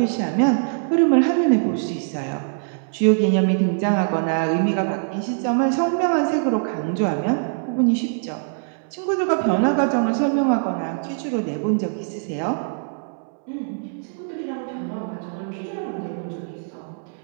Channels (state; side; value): silent; left; 64 dB below the other